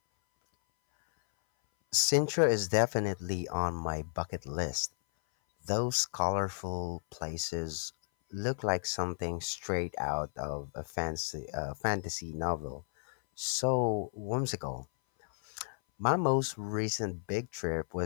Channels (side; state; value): right; silent; 56 dB below the other